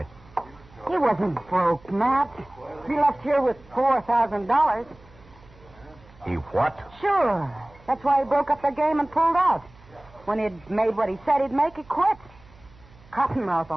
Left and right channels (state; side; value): noise; right; hum, 25 dB below the sound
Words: He wasn't broke, Matt. He left here with $4,000. He what? Sure. That's why he broke up the game and pulled out. When he'd made what he said he'd make, he quit. Cottonmouth